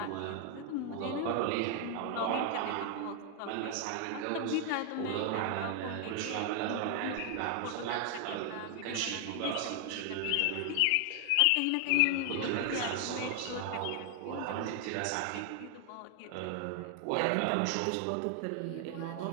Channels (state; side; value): different; both; correlation 0.00